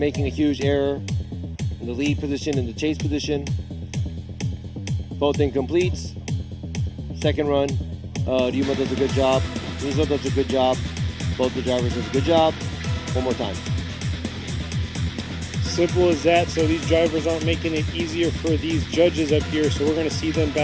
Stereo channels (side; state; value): both; identical; correlation 1.00